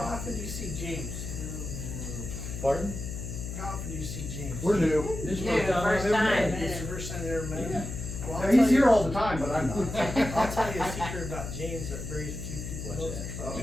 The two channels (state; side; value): noise; left; hum, 7 dB below the sound